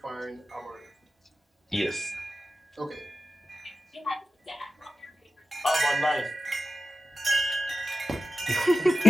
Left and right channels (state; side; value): normal; both; correlation 0.93